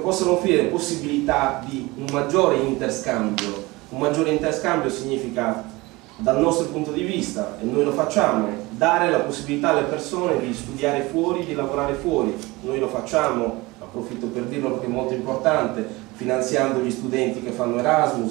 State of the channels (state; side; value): quieter; left; 22.2 dB